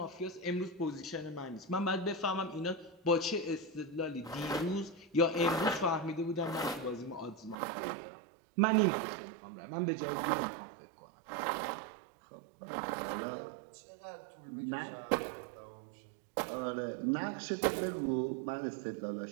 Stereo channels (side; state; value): left; drops out; at 7.6 s